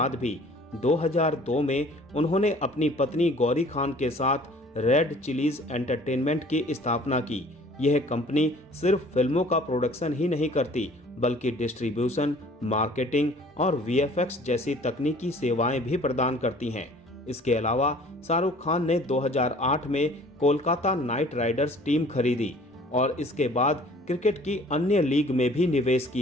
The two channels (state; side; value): normal; both; correlation 0.51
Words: भी 2002 में उन्होंने अपनी पत्नी गौरी खान के साथ रेड चिलीज एंटरटेनमेंट की स्थापना की। यह कंपनी सिर्फ फिल्मों का प्रोडक्शन ही नहीं करती, बल्कि डिस्ट्रीब्यूशन, मार्केटिंग और वीएफएक्स जैसी तकनीकी सेवाएं भी प्रदान करती हैं। इसके अलावा शाहरुख खान ने 2008 में कोलकाता नाइट राइडर्स टीम खरीदी और इसके बाद क्रिकेट की अन्य लीग में भी निवेश